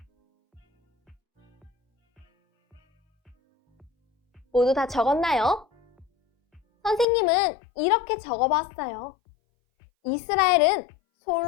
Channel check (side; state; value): right; drops out; at 7.1 s